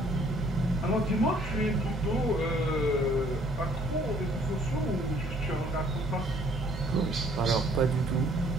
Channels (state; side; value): normal; both; correlation 0.60